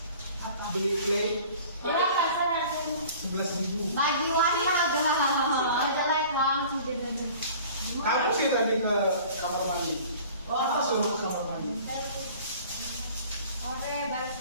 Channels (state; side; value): inverted; both; correlation -0.46